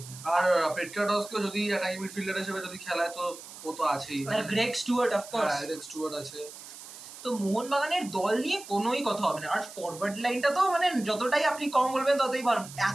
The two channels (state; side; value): noise; right; hiss, 15 dB below the sound